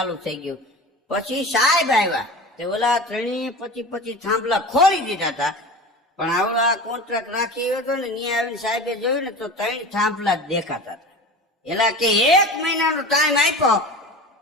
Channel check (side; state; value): both; normal; correlation 0.33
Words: થઈ ગયું. પછી સાહેબ આવ્યા તે ઓલા 25 થાંભલા ખોલી દીધા હતા, પણ આવડા કોન્ટ્રાક્ટ રાખી હતો ને ત્યાં આવીને સાહેબે જોયું ને તો 3 થાંભલા જ દેખાતા હતા. એલા કે 1 મહિનાનો ટાઈમ આપ્યો,